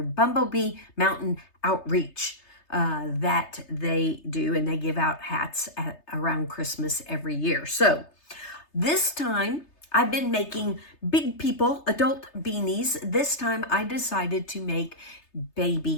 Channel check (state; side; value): late; right; 3.3 ms